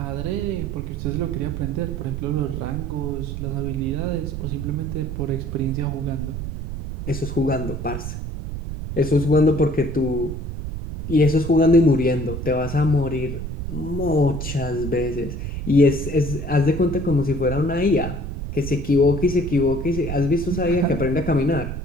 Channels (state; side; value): noise; right; rumble, 6 dB below the sound